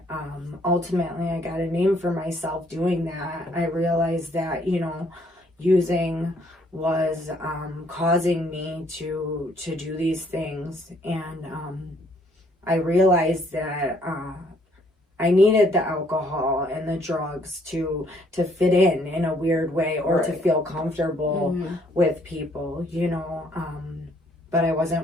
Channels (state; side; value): normal; both; correlation 0.65